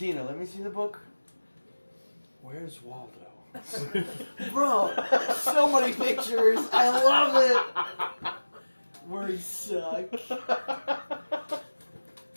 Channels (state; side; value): inverted; both; correlation -1.00